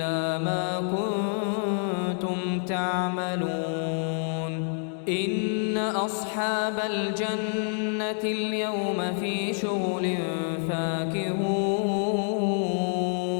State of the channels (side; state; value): right; silent; 60 dB below the other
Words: ما كنتم تعملون إن أصحاب الجنة اليوم في شغل فاكهون